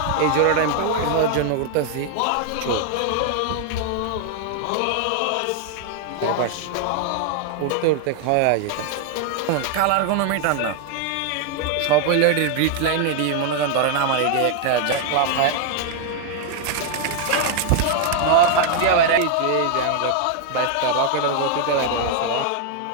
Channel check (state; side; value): different; both; correlation 0.00